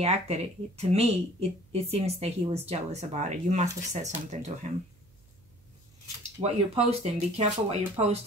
acted, to me, it seems that he was jealous about it. You must have said something to him. What you're posting, be careful what you're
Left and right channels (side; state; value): right; noise; hum, 30 dB below the sound